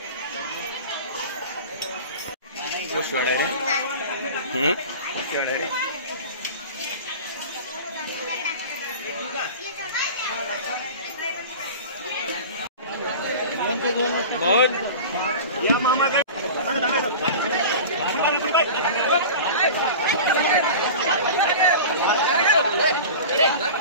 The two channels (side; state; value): both; inverted; correlation -0.34